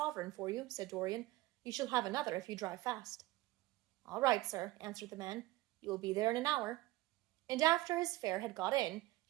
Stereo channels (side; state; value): left; quieter; 18.3 dB